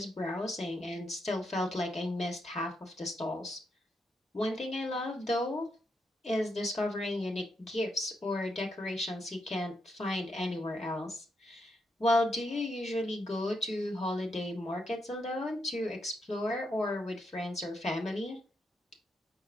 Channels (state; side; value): normal; both; correlation 0.81